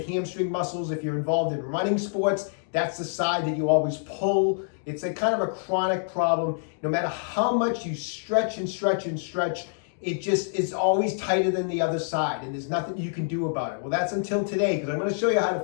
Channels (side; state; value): right; silent; digital silence